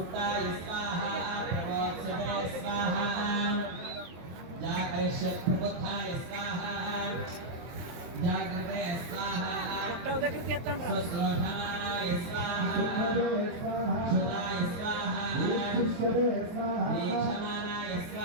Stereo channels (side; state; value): left; late; 23 ms